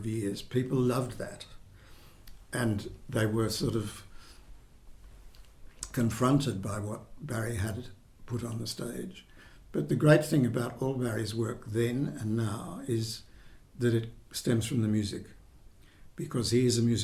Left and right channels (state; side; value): identical; both; correlation 1.00